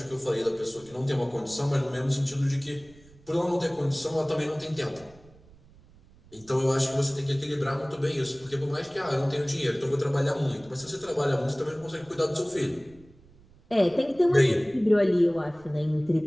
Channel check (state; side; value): noise; right; rumble, 26 dB below the sound